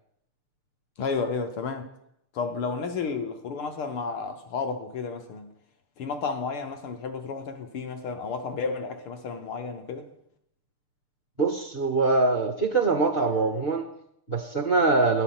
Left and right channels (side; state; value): right; late; 6.8 ms